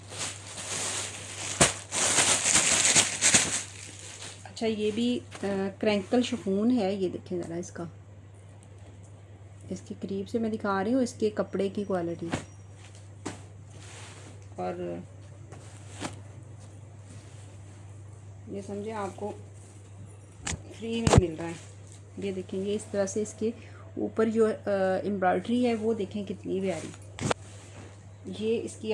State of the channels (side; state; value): both; identical; correlation 1.00